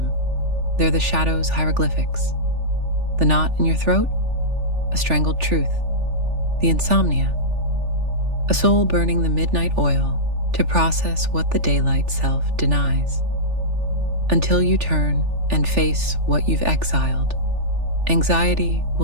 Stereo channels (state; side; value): late; left; 3.4 ms